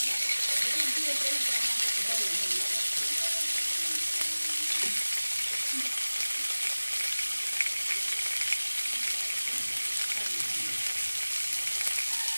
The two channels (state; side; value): inverted; both; correlation -1.00